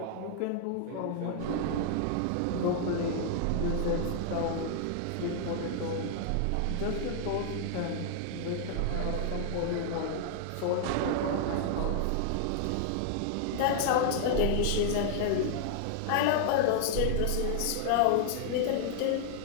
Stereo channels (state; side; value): different; both; correlation 0.00